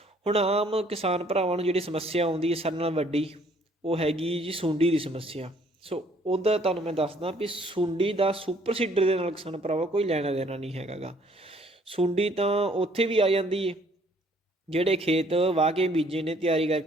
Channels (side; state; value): both; normal; correlation 0.62